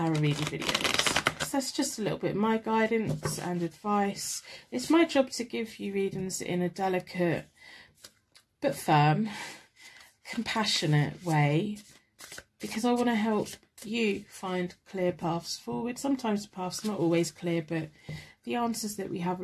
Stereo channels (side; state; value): both; identical; correlation 1.00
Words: reading videos. So that's just a little bit of my guidance and advice. It's my job to give you readings in a delicate but firm, compassionate way, because I want to help you find clear paths forward. Sometimes the path's not always clear, but the answers that we have